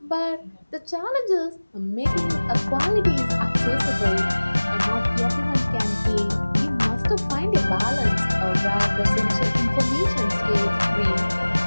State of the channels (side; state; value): both; inverted; correlation -1.00